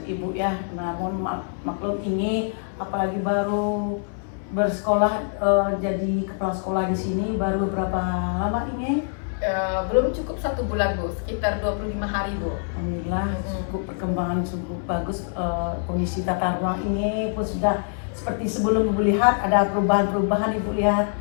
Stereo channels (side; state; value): right; silent; 62 dB below the other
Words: Ibu ya. Namun maklum Inge, apalagi baru bersekolah jadi kepala sekolah di sini baru berapa lama Inge? Belum cukup 1 bulan Bu, sekitar 25 hari Bu. Alhamdulillah cukup perkembangan cukup bagus, kondisi tata ruang ini pun sudah seperti sebelum Ibu lihat, ada perubahan-perubahan Ibu lihat.